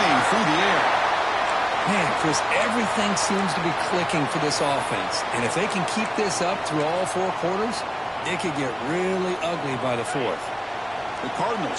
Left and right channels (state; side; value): identical; both; correlation 1.00